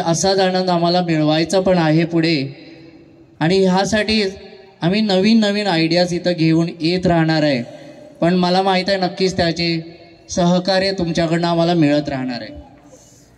आनंद आम्हाला मिळवायचा पण आहे पुढे. आणि ह्यासाठी आम्ही नवीन आयडियाज इथं घेऊन येत राहणार आहे. पण मला माहीत आहे नक्कीच त्याचे सहकार्य तुमच्याकडनं आम्हाला मिळत राहणार आहे.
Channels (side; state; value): both; identical; correlation 1.00